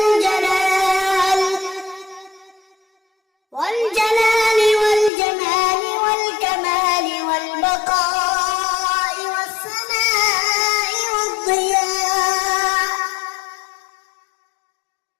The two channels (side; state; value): right; drops out; at 5.1 s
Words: والجمال والكمال والبقاء والسماء والضياء